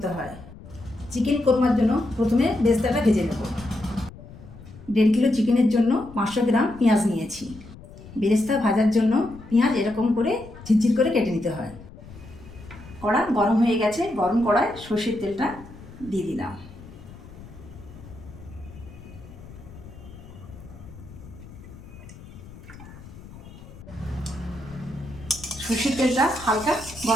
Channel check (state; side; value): noise; left; rumble, 17 dB below the sound